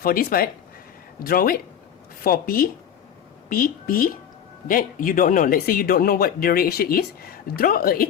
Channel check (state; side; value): quieter; right; 9.0 dB